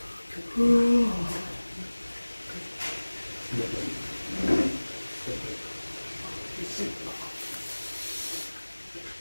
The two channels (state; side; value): inverted; both; correlation -1.00